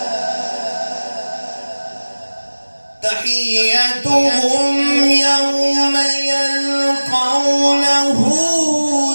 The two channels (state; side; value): inverted; both; correlation -1.00